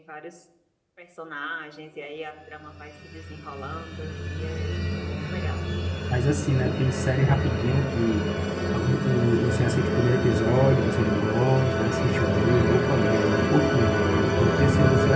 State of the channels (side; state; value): both; identical; correlation 1.00